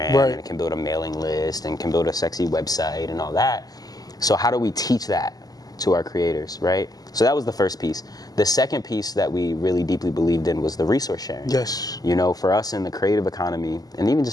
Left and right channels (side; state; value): right; late; 0.18 ms